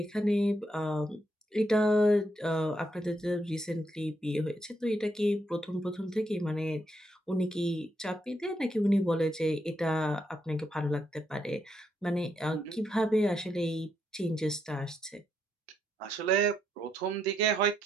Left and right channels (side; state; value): both; normal; correlation 0.78